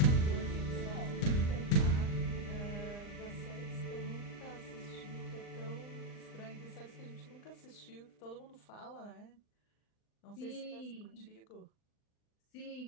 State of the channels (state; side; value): late; right; 39 ms